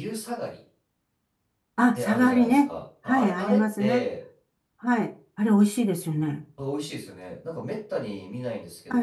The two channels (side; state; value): both; identical; correlation 1.00